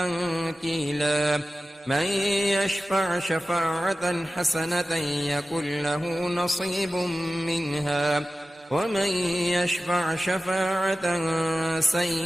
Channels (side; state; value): both; normal; correlation 0.95